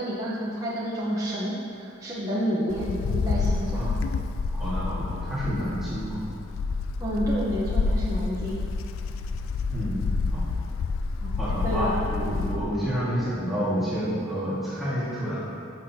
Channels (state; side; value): normal; both; correlation 0.73